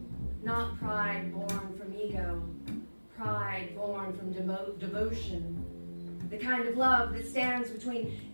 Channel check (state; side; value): inverted; both; correlation -1.00